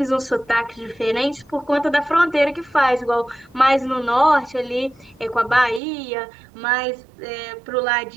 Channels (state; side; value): drops out; left; at 5.8 s